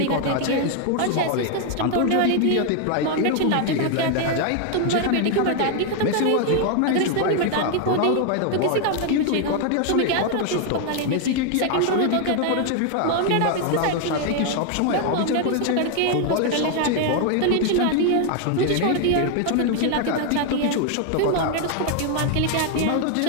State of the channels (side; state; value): both; different; correlation 0.01